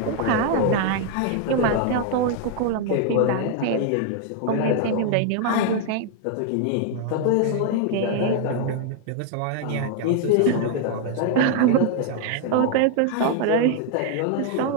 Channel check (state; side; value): different; both; correlation 0.00